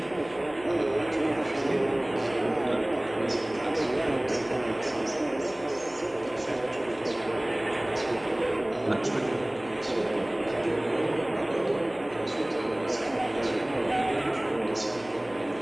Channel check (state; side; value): noise; left; hum, 22 dB below the sound